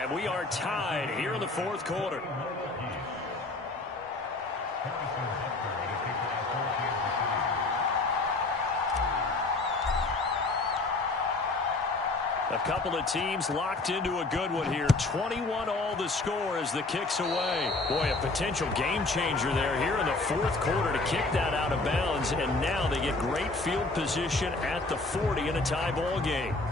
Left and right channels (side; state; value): right; quieter; 3.3 dB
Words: we are tied here in the 4th quarter. A couple of teams locked into a good one here. 21 all the score as the kick's away. Boy, a potential game changer there here in the fourth quarter to kick that out of bounds. And now they get great field position at the 40 in a tie ball game.